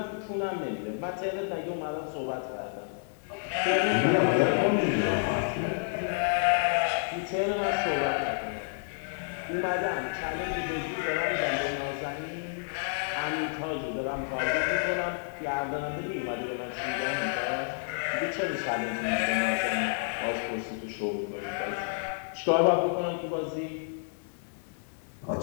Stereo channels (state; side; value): silent; right; digital silence